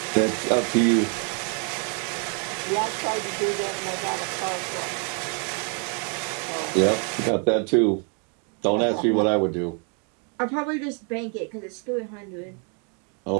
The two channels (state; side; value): quieter; left; 39.7 dB